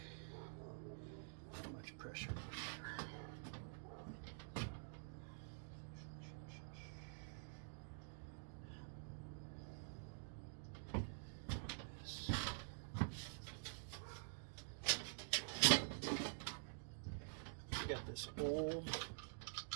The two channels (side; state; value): left; silent; digital silence